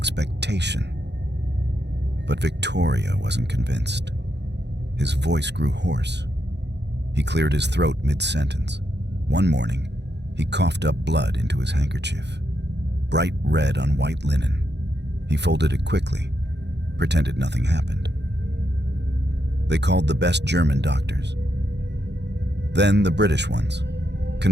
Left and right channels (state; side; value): late; left; 0.50 ms